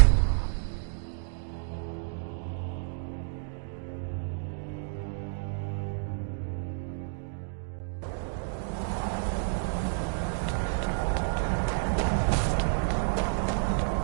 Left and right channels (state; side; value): silent; left; digital silence